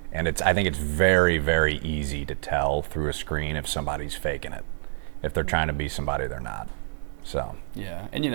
And I think it's very, very easy to tell through a screen if somebody's faking it. If they're trying to be somebody they're not. So. Yeah, and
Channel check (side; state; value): left; silent; 60 dB below the other